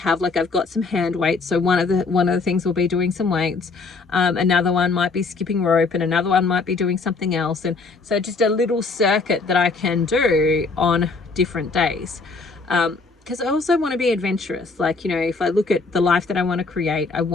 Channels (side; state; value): right; quieter; 4.1 dB